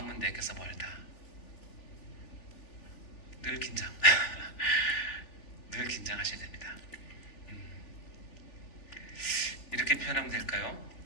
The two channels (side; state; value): right; late; 3.4 ms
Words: 내게서 멀다. 늘 긴장. 늘 긴장하셔야 됩니다. 이렇게 표현하면 될까요?